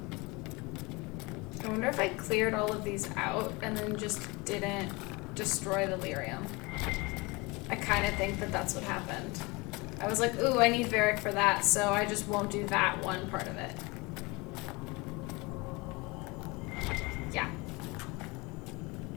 I wonder if I cleared all of these out and then just didn't destroy the lyrium. I kind of think that that's what happened. I was like, ooh, I need Varric for that, so I just won't do that one part of it. Yeah.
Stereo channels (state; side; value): quieter; right; 25.5 dB